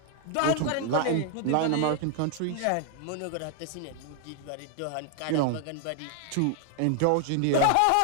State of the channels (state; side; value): different; both; correlation 0.00